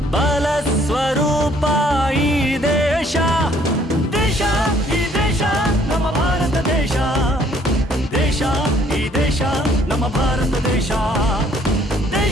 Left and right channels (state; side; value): normal; both; correlation 0.62